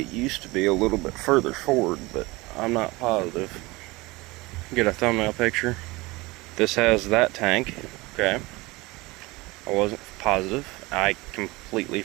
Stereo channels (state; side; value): quieter; left; 22.4 dB